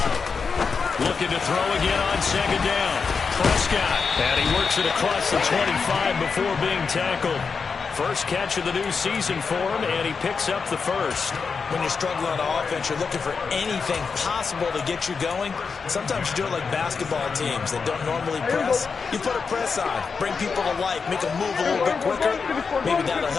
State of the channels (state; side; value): quieter; right; 5.3 dB